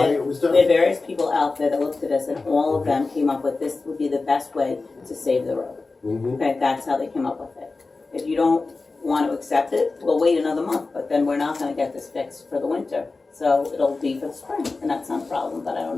it was We had done. various people out there that looked at this, and all of them came up with this would be the best way to save the road. Mhm. Okay, that's how they came up with it. If you don't want to accept it, we'll wait another month, but then we're not gonna get this fixed for the winter. So it'll be for the spring, and that's not a problem, but I don't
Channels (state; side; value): quieter; right; 3.8 dB